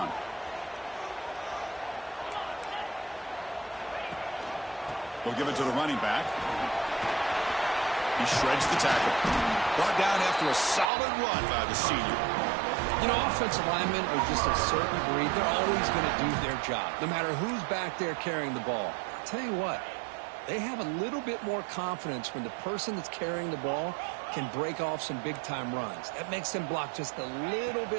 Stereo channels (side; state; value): left; drops out; at 10.9 s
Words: We'll give it to the running back. He shreds the tackle. Brought down after a solid run by the senior. You know, offensive linemen are just a certain breed. They're always going to do their job, no matter who's back there carrying the ball. I'll tell you what, they have a little bit more confidence when the person that's carrying the ball can break off some big-time runs. That makes them block just a little